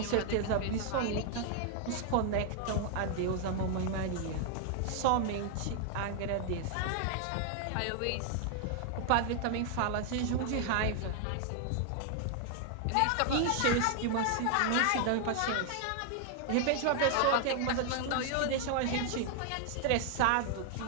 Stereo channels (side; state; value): both; different; correlation 0.00